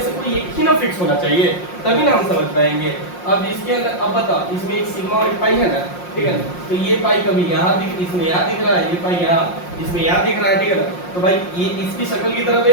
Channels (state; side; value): late; right; 5.6 ms